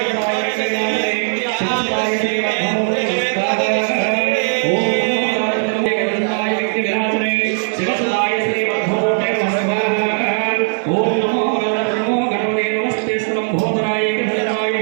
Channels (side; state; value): left; silent; digital silence